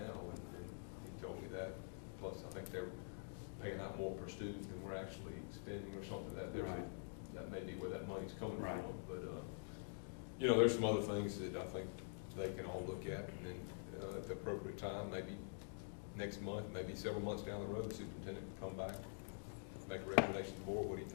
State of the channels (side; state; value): right; silent; digital silence